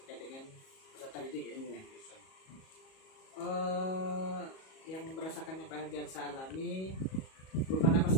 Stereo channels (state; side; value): late; right; 37 ms